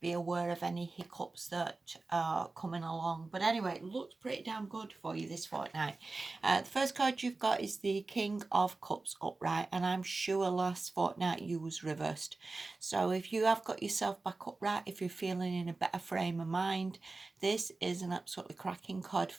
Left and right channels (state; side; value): quieter; left; 3.5 dB